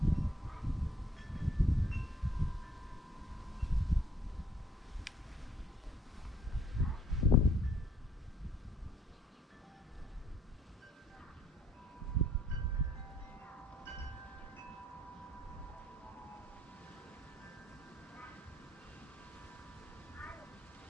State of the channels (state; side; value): normal; both; correlation 0.64